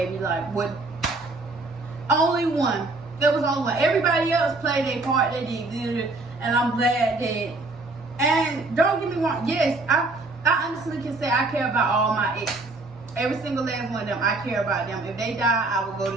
like what? Only one. There was only one. Everybody else played their part. They did good, and I'm glad that. And don't get me wrong. Yes, I honestly can say I care about all my exes. Every single last one of them, I care about them. If they die, I will go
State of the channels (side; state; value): left; quieter; 3.2 dB